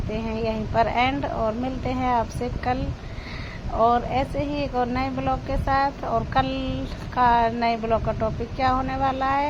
हैं यहीं पर एंड, और मिलते हैं आपसे कल और ऐसे ही एक और नए ब्लॉग के साथ। और कल का नए ब्लॉग का टॉपिक क्या होने वाला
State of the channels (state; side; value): identical; both; correlation 1.00